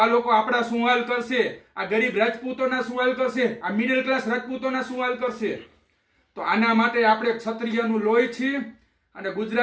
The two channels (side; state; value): both; identical; correlation 1.00